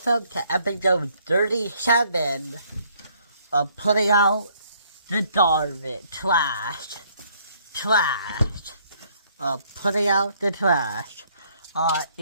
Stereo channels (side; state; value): both; inverted; correlation -0.65